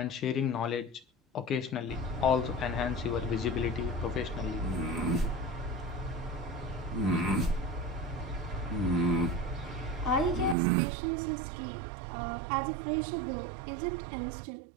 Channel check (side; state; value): left; drops out; at 10.6 s